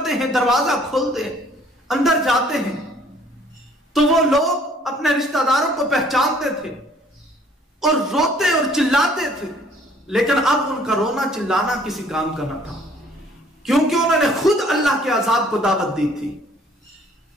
ہیں، دروازہ کھولتے ہیں، اندر جاتے ہیں تو وہ لوگ اپنے رشتہ داروں کو پہچانتے تھے اور روتے اور چلاتے تھے، لیکن اب ان کا رونا چلانا کسی کام کا نہ تھا، کیونکہ انہوں نے خود اللہ کے عذاب کو دعوت دی تھی۔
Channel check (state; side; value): normal; both; correlation 0.59